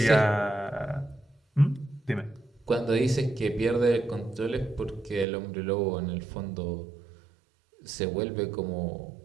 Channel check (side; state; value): left; drops out; at 5.2 s